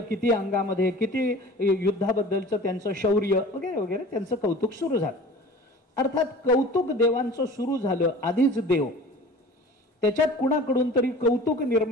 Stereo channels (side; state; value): both; normal; correlation 0.42